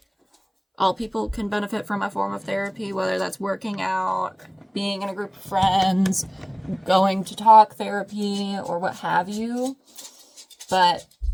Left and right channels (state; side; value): identical; both; correlation 1.00